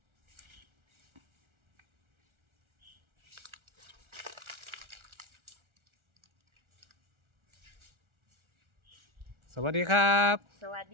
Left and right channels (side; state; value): left; late; 1.4 ms